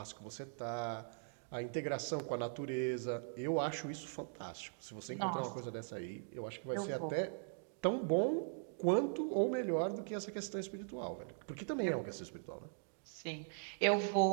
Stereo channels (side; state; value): left; silent; digital silence